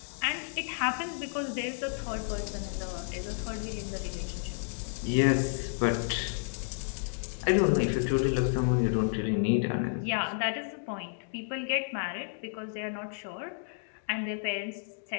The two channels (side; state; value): right; silent; digital silence